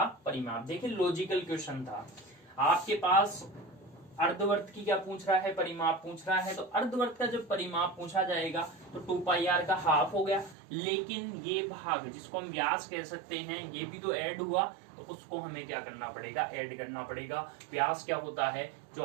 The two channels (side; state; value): left; drops out; at 10.6 s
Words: परिमाप। देखिए लॉजिकल क्वेश्चन था, आपके पास अर्धवर्त की क्या पूछ रहा है, परिमाप पूछ रहा है। तो अर्धवर्त का जब परिमाप पूछा जाएगा तो 2 पाई आर का हाफ हो गया, लेकिन ये भाग जिसको हम व्यास कह सकते हैं ये भी तो ऐड हुआ, तो उसको हमें क्या करना पड़ेगा, ऐड करना पड़ेगा। व्यास क्या होता है, जो